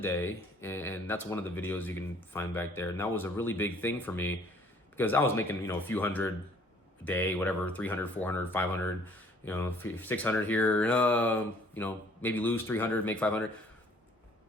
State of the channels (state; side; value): normal; both; correlation 0.58